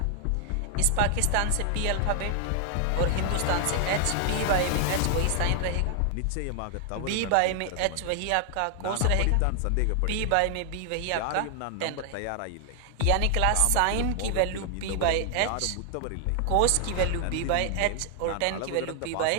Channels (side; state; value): both; different; correlation 0.00